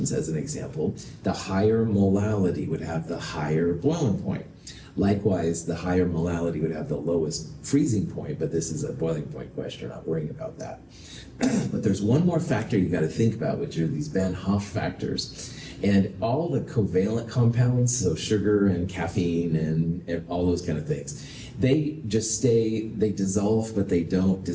as an example, the higher molality would have the higher boiling point. Likewise, the higher molality would have the lowest freezing point, but this is a boiling point question, we're not worrying about that. But there's one more factor you got to think about, which are these Van Hoff factors. And all the covalent compounds, so sugar and caffeine and all those kind of things, they dissolve, but they don't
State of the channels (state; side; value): identical; both; correlation 1.00